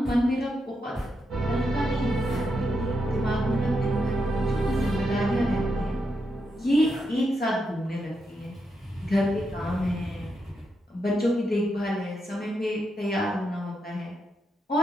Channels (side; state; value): both; normal; correlation 0.83